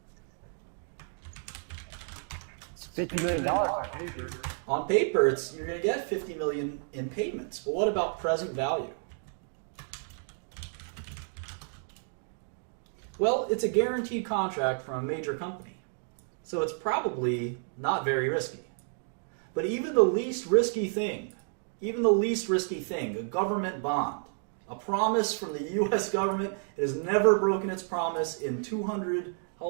It's $50 million on paper. On paper, you're going to get $50 million in payments. But what about present value? Well, it's a guaranteed contract from a major company. So it's probably not very risky. But even the least risky thing, a government bond, a promise from the U.S. government, it has never broken its promise in 200, how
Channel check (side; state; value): left; silent; 57 dB below the other